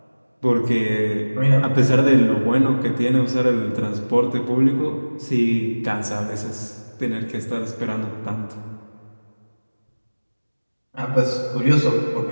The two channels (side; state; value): both; inverted; correlation -1.00